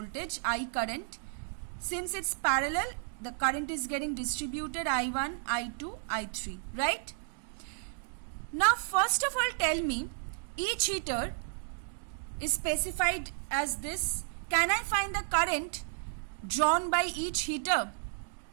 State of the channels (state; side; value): silent; left; digital silence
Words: I current. Since it's parallel, the current is getting distributed I1, I2, I3, right? Now first of all tell me, each heater is specified as this. Can I find the current drawn by each heater?